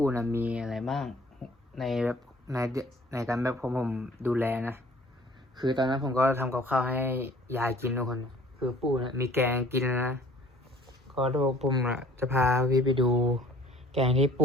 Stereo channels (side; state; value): both; normal; correlation 0.53